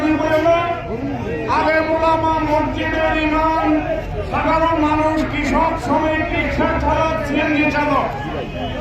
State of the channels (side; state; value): both; identical; correlation 1.00